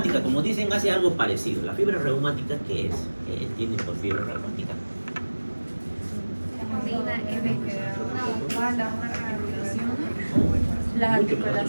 como dicen, hace algo parecido. ¿La fiebre reumática qué es? ¿Qué entienden por fiebre reumática? Las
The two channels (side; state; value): both; inverted; correlation -1.00